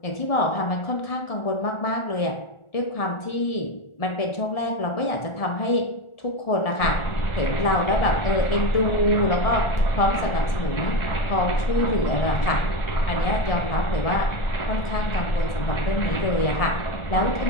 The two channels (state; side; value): late; right; 1.4 ms